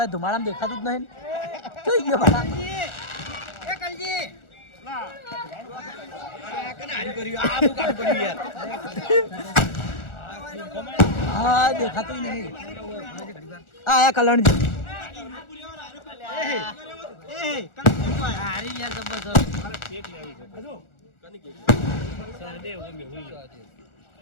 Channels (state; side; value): late; right; 1.4 ms